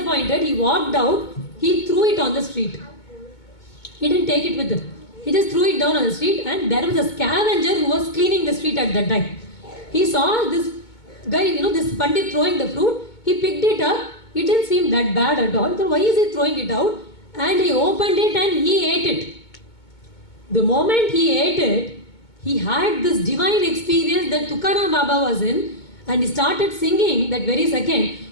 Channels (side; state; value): right; late; 2.2 ms